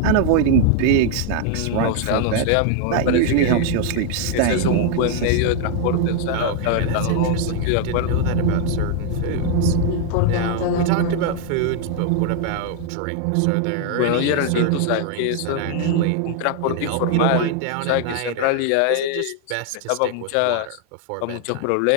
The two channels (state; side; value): different; both; correlation 0.00